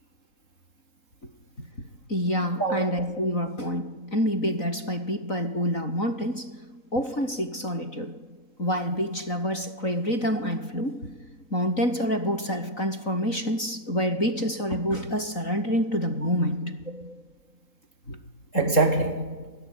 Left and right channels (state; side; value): late; right; 4.0 ms